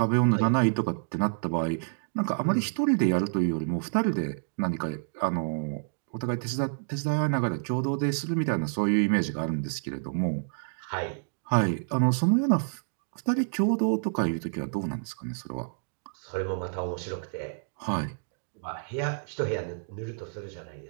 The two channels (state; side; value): silent; left; digital silence